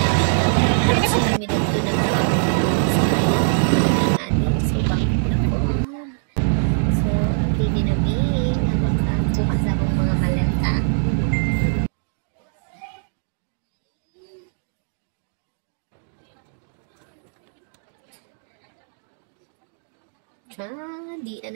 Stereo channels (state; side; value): silent; left; digital silence